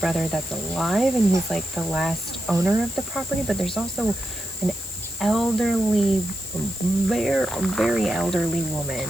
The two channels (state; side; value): noise; left; hiss, 11 dB below the sound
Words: that's alive and he's like the last owner of the property, but there's also an elderly, very elderly